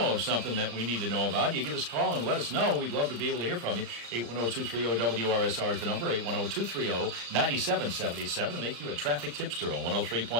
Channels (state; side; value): late; left; 35 ms